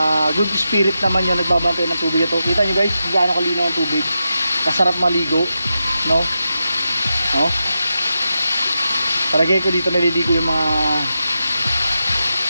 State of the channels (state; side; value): inverted; both; correlation -0.88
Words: good spirit naman yun nagbabantay ng tubig ito. Kita nyo guys, gaano kalinaw ang tubig. Kasarap maligo, no? No? Palagay ko dito naliligo yung mga